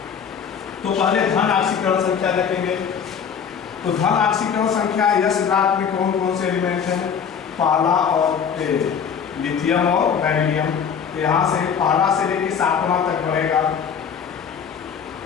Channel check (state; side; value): quieter; right; 7.2 dB